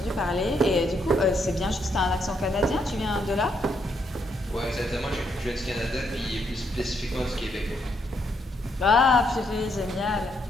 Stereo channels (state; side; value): normal; both; correlation 0.75